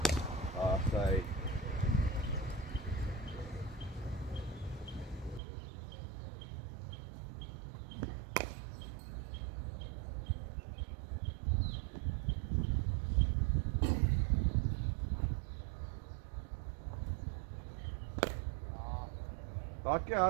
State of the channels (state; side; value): drops out; left; at 5.4 s